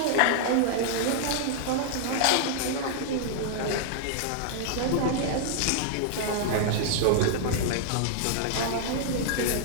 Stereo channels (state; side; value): different; both; correlation -0.01